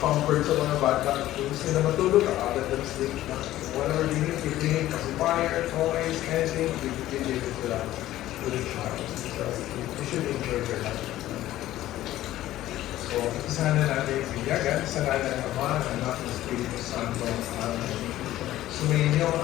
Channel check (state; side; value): quieter; right; 14.5 dB